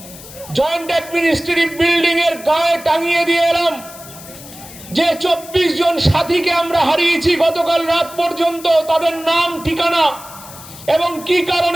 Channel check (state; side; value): noise; left; hiss, 17 dB below the sound